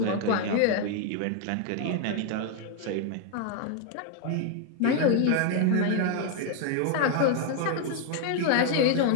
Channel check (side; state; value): both; different; correlation 0.00